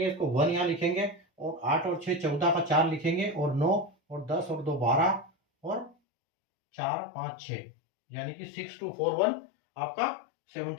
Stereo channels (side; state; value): right; drops out; at 6.0 s